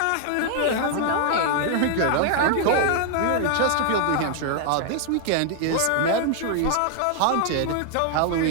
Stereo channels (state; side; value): different; both; correlation 0.00